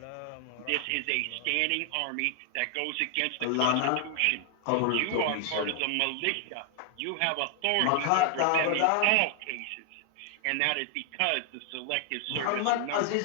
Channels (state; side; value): different; both; correlation 0.00